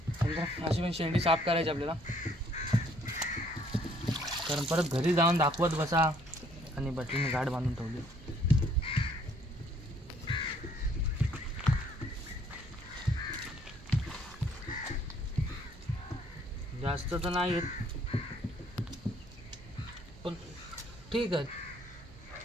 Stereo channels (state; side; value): normal; both; correlation 0.64